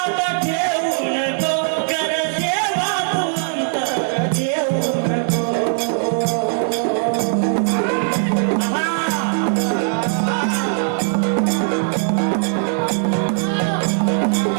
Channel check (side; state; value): left; silent; digital silence